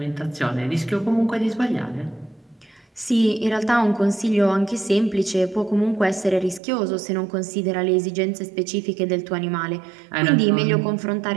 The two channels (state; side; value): drops out; left; at 6.6 s